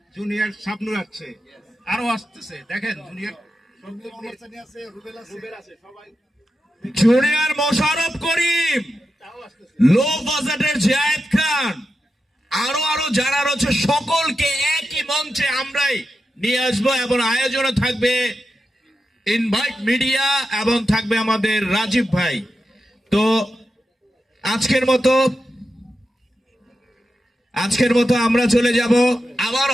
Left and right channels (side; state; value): both; normal; correlation 0.90